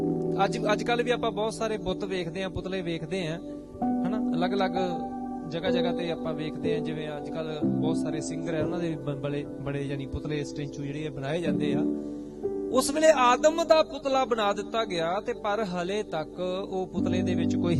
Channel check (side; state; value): both; identical; correlation 1.00